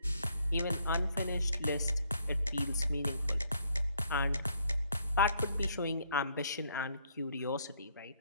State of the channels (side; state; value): both; inverted; correlation -0.69